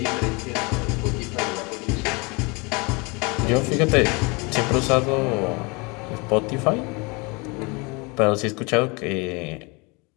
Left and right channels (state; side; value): quieter; right; 28.3 dB